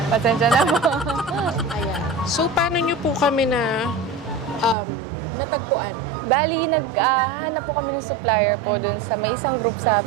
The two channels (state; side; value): drops out; left; at 4.8 s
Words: Pasensya na po. Ayan. So, paano nyo po kami natagpuan? Bali, naghanap po kami ng supplier po dun sa may isang group sa